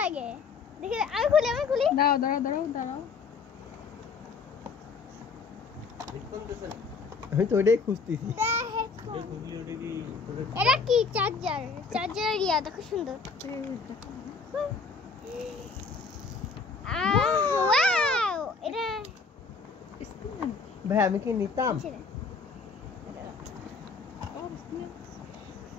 লাগে দেখি আমি খুলি দাঁড়াও আমি তো ওইটাই খুঁজতেছি এটা কি চার্জার ইয়া দেখো সুন্দর ওয়াও এটা ভাই আমি কি নিতাম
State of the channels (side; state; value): right; quieter; 4.9 dB